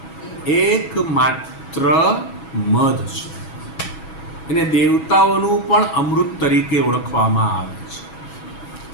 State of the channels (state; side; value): late; right; 6.2 ms